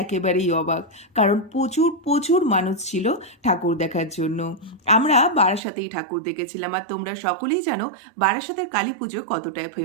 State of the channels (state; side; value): drops out; left; at 5.6 s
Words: একেবারেই অবাক। কারণ প্রচুর প্রচুর মানুষ ছিল ঠাকুর দেখার জন্য। আমরা বারাসাতেই ঠাকুর দেখেছিলাম, আর তোমরা সকলেই জানো বারাসাতের কালী পুজো কতটাই